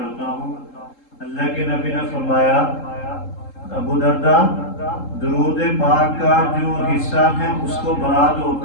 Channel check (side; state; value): right; late; 3.7 ms